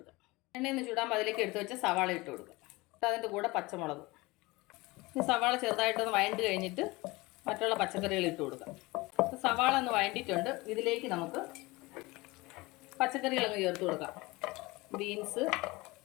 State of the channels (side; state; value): right; quieter; 22.6 dB